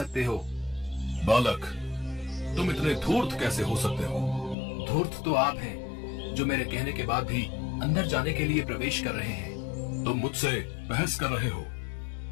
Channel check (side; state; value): right; drops out; at 4.5 s